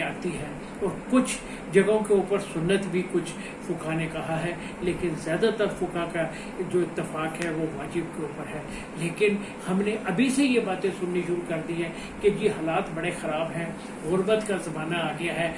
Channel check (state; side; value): identical; both; correlation 1.00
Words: آتی ہے، اور کچھ جگہوں کے اوپر سنت بھی کچھ فقہا نے کہا ہے، لیکن زیادہ تر فقہا کا جو اتفاق ہے وہ واجب کے اوپر ہے۔ لیکن ہم نے ابھی سے یہ باتیں سننی شروع کر دی ہیں کہ جی حالات بڑے خراب ہیں، غربت کا زمانہ آ گیا ہے،